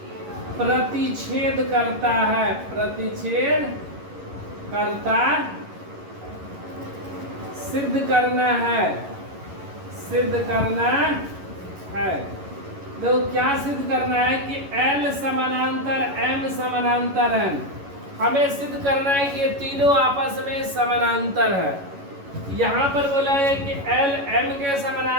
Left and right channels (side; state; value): left; late; 11 ms